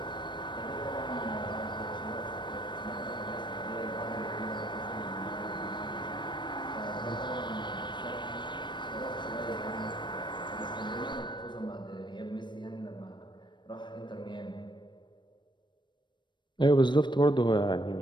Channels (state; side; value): late; right; 0.22 ms